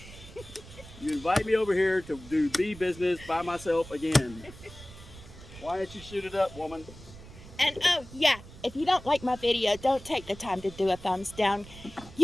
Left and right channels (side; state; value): right; noise; rumble, 17 dB below the sound